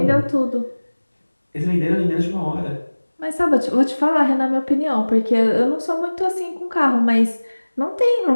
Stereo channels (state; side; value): inverted; both; correlation -1.00